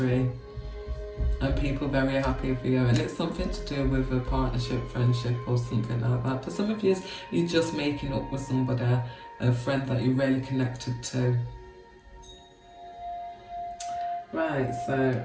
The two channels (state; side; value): identical; both; correlation 1.00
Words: and people very happy for you, and it's something to do with a partnership, friendship, or something like that. For some of you, you're just making up with somebody, a friend that you're really connected to. Right, so